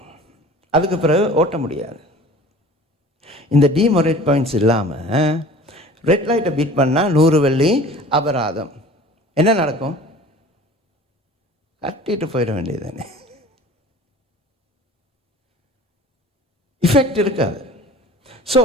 அதுக்கு பிறகு ஓட்ட முடியாது. இந்த டிமோரேட் பாயிண்ட்ஸ் இல்லாமல் ரெட் லைட்டை பீட் பண்ணால் 100 வெள்ளி அபராதம். என்ன நடக்கும்? கட்டிட்டு போயிட வேண்டியது தானே, இஃபெக்ட் இருக்காது. ஸோ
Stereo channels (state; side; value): normal; both; correlation 0.44